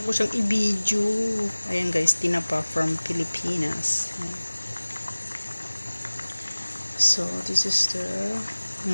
ko siyang i-video. Ayan, guys, tinapa from Pilipinas. So this is the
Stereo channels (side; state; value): both; inverted; correlation -1.00